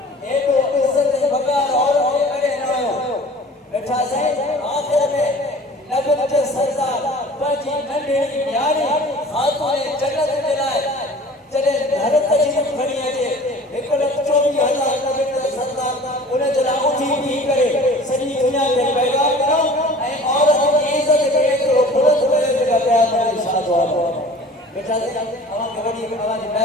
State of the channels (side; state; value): both; normal; correlation 0.45